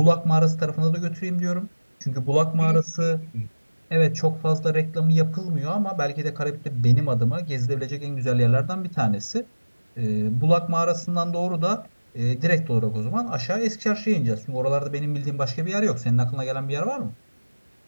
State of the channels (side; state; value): both; inverted; correlation -1.00